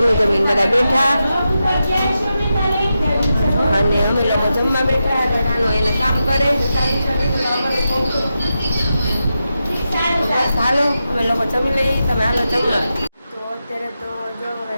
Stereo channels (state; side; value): inverted; both; correlation -0.89